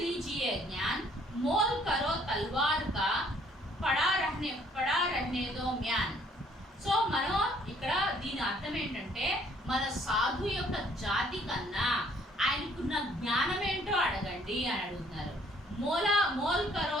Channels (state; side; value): normal; both; correlation 0.62